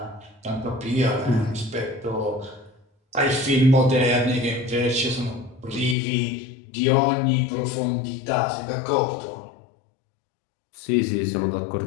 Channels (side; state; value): right; drops out; at 6.0 s